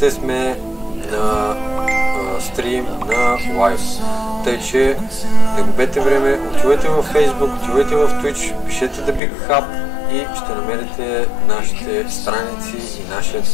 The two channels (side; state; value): right; drops out; at 9.2 s